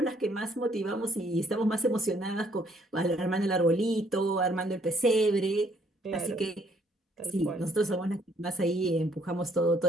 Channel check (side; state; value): both; normal; correlation 0.65